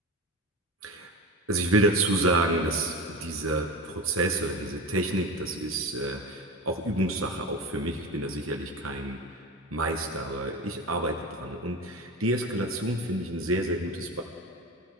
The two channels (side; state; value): both; normal; correlation 0.27